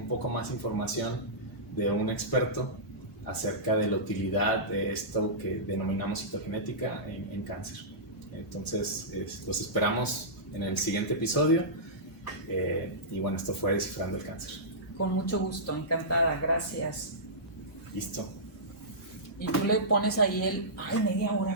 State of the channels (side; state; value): both; normal; correlation -0.16